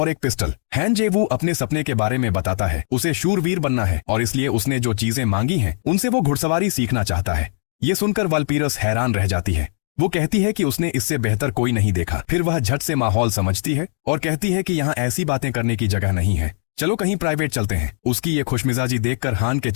एक पिस्टल। हैंजेवू अपने सपने के बारे में बताता है, उसे शूरवीर बनना है और इसलिए उसने जो चीजें मांगी हैं उनसे वो घुड़सवारी सीखना चाहता है। ये सुनकर वालपीरस हैरान रह जाती है। वो कहती है कि उसने इससे बेहतर कोई नहीं देखा। फिर वह झट से माहौल समझती है और कहती है कि यहाँ ऐसी बातें करने की जगह नहीं है, चलो कहीं प्राइवेट चलते हैं। उसकी ये खुशमिजाजी देखकर हान के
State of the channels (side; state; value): right; silent; 65 dB below the other